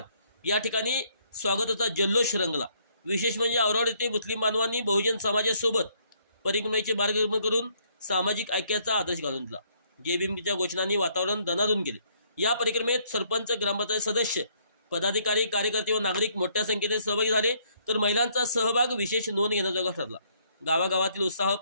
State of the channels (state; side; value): inverted; both; correlation -0.67